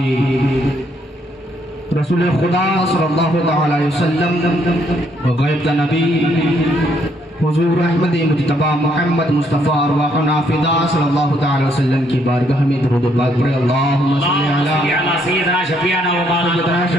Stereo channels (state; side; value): normal; both; correlation 0.71